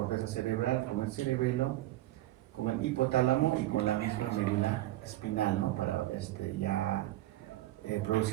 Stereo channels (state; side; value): quieter; left; 15.8 dB